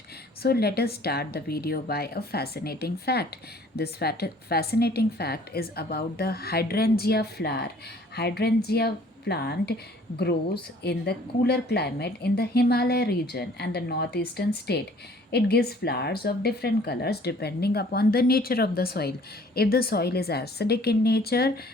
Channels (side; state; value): both; normal; correlation 0.55